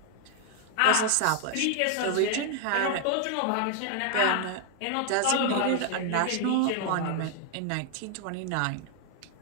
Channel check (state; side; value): different; both; correlation 0.00